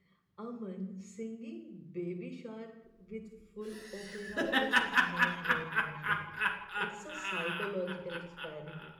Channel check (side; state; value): both; identical; correlation 1.00